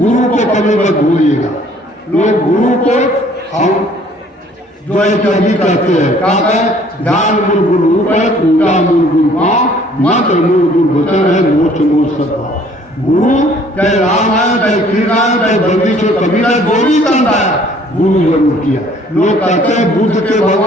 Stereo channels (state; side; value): normal; both; correlation 0.58